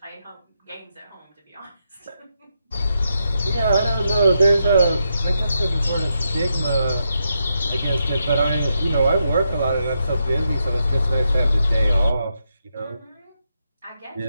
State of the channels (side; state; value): both; inverted; correlation -0.83